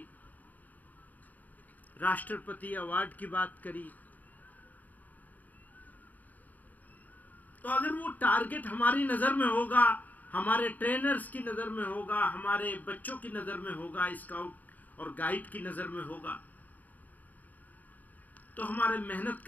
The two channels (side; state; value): right; late; 0.080 ms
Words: राष्ट्रपति अवार्ड की बात करी। तो अगर वो टारगेट हमारी नज़र में होगा, हमारे ट्रेनर्स की नज़र में होगा, हमारे बच्चों की नज़र में होगा, स्काउट और गाइड की नज़र में होगा, तो हमारे मेहनत